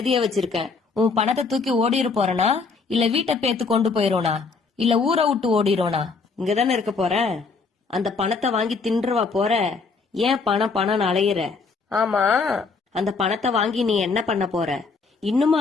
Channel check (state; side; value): quieter; right; 4.6 dB